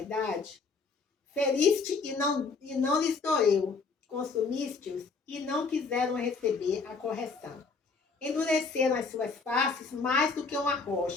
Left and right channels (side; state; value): right; quieter; 4.5 dB